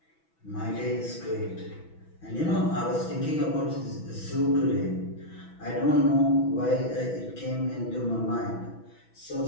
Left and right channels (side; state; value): right; late; 6.1 ms